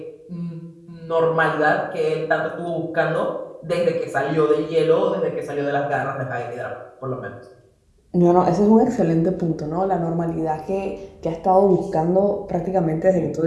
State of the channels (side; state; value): both; identical; correlation 1.00